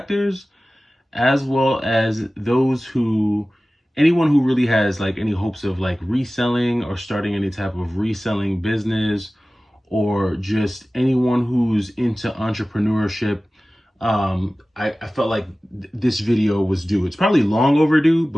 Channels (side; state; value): both; normal; correlation 0.97